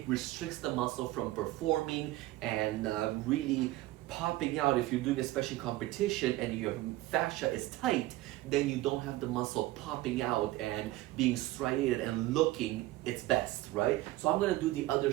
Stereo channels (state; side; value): quieter; left; 17.1 dB